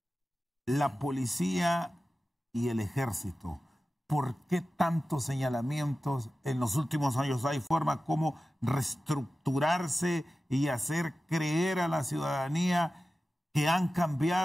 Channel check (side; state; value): both; normal; correlation 0.94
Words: La policía y el ejército, ¿por qué tantos señalamientos en los últimos años? ¿Hay forma como reestructurarse y hacer creer a la ciudadanía que han